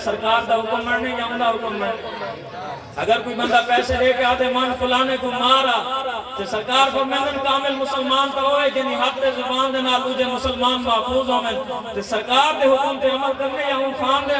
سرکار دا حکم مرنے یا انہا حکم مرنے اگر کوئی بندہ پیسے لے کے آدھے من فلانے کو مارا تو سرکار فرمائن کامل مسلمان تو ہوئے جنہی حق دے زبان دے نال اوجے مسلمان محفوظ ہوئے تو سرکار دے حکم تے عمل کرنے یا ان خان دے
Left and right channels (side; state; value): both; identical; correlation 1.00